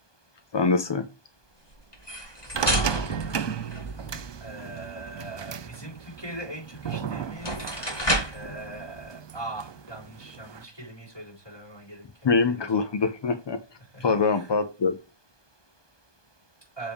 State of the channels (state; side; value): late; right; 1.2 ms